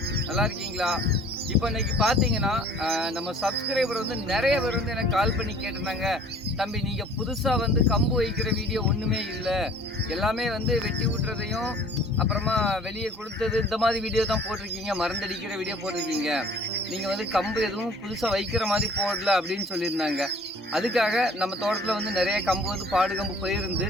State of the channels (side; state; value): both; normal; correlation 0.51